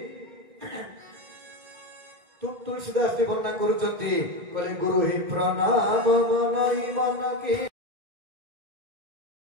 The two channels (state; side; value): late; left; 2.1 ms